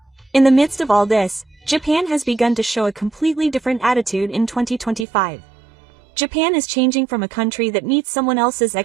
In the midst of all this, Japan has begun to show a completely different attitude in 2025. Japan is changing from a country that meets someone else's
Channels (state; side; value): drops out; left; at 5.1 s